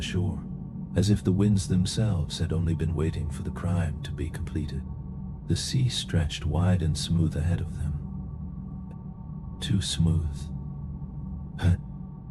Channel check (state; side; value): identical; both; correlation 1.00